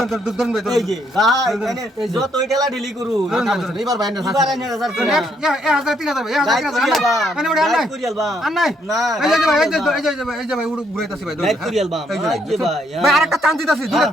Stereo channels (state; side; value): normal; both; correlation 0.72